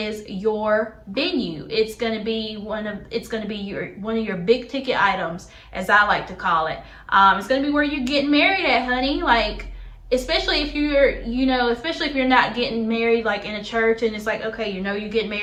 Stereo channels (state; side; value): identical; both; correlation 1.00